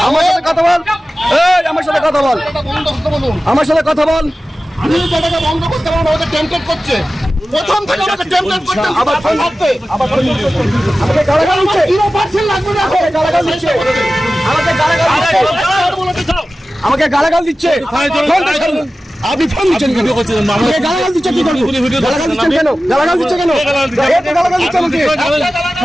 আমার সাথে কথা বল, এই আমার সাথে কথা বল, আমার সাথে কথা বল। আমি টাকা বন্ধ করতে পারবো, আমাকে টেম্পটেড করছে প্রথম থেকে, আমাকে টেম্পটেড করতে আবার ফোন করতে, আমাকে গালাগাল দিচ্ছে, 0% লাগবে না, আমাকে গালাগাল দিচ্ছে, আমাকে গালাগাল দিচ্ছে, আমাকে গালাগাল দিচ্ছে। আপনি ফোন দিচ্ছেন কেন? আমাকে গালাগাল দিচ্ছে কি করবো? গালাগাল দিচ্ছেন কেন? গালাগাল দিচ্ছে কেন? গালাগাল দিচ্ছে আমাকে,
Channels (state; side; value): normal; both; correlation 0.95